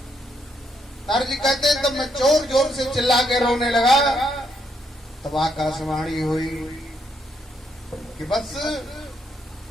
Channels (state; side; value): normal; both; correlation 0.75